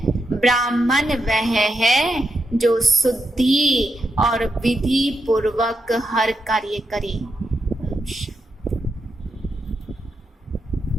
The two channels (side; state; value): both; normal; correlation 0.84